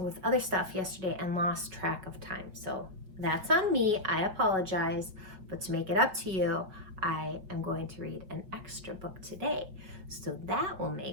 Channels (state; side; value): late; left; 5.3 ms